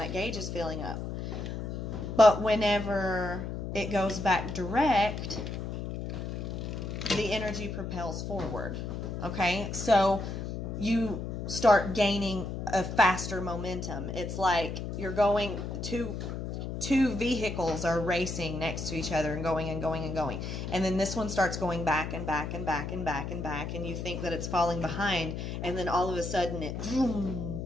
gauge is filling up. But whenever it goes back direct, the energy propels forward. Okay? So you start gaining a faster momentum. It's like you're going, two vehicles are racing next to each other and going and going and going. And then this one starts going back and back and back and back and back, and you think that it's falling behind, and then all of a sudden it vroom,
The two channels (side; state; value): left; noise; hum, 5 dB below the sound